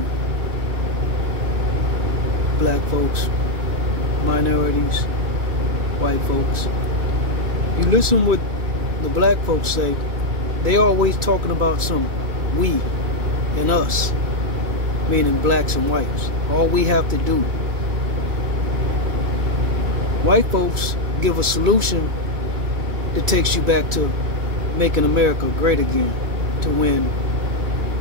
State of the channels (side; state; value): left; late; 2.3 ms